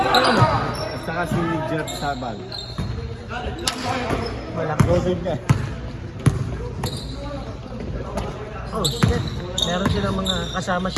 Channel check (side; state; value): both; identical; correlation 1.00